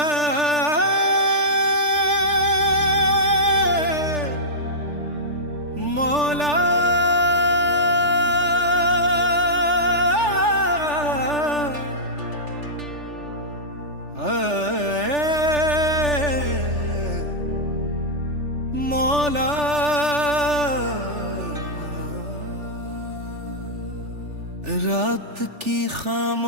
मौला। रात की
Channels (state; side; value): late; left; 3.4 ms